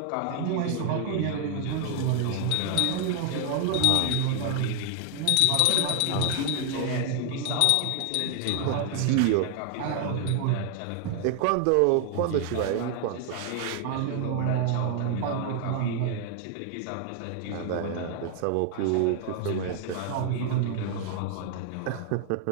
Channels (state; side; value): different; both; correlation 0.00